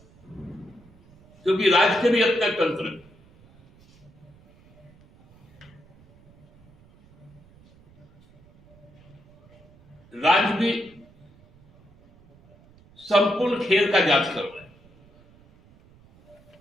क्योंकि राज्य के भी अपना तंत्र है। राज्य भी संपूर्ण खेल का जांच कर रहा है।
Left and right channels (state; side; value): noise; right; rumble, 28 dB below the sound